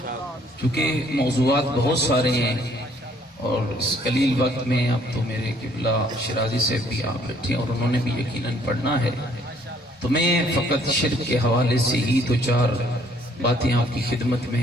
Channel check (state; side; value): normal; both; correlation 0.63